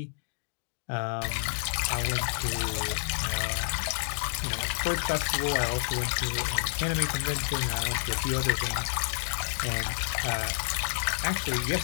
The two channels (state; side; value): silent; right; digital silence